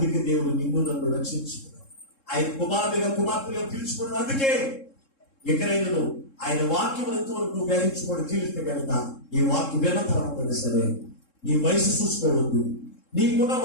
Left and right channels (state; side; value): late; right; 3.7 ms